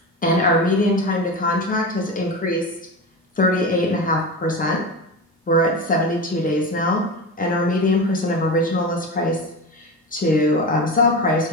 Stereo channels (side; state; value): both; normal; correlation 0.24